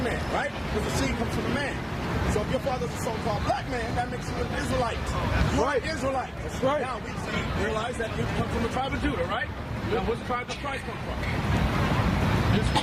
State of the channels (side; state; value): both; identical; correlation 1.00